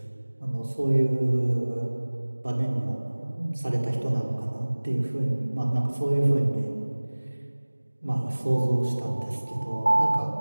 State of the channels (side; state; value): both; inverted; correlation -1.00